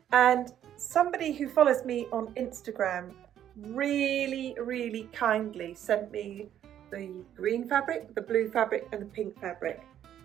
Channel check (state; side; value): quieter; left; 10.6 dB